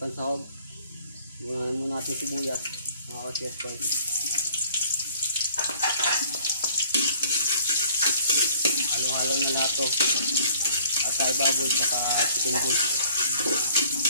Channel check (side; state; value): both; inverted; correlation -0.56